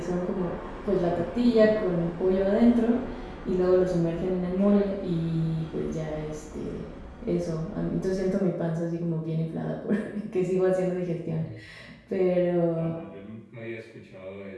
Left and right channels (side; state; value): both; identical; correlation 1.00